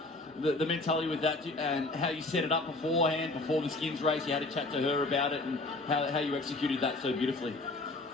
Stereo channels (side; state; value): right; quieter; 3.0 dB